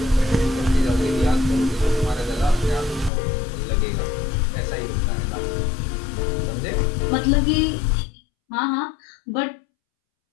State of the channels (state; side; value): drops out; right; at 3.1 s